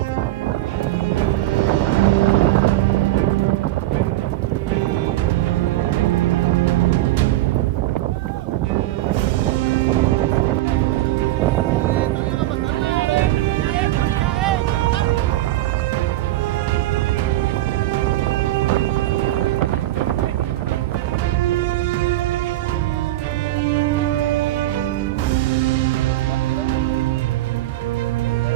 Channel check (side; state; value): left; quieter; 15.9 dB